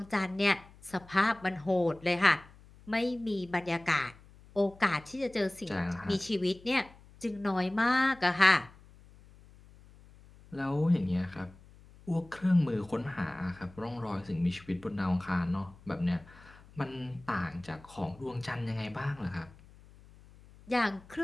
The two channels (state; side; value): noise; left; hum, 23 dB below the sound